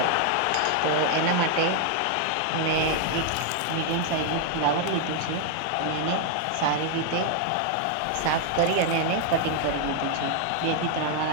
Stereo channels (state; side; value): different; both; correlation 0.00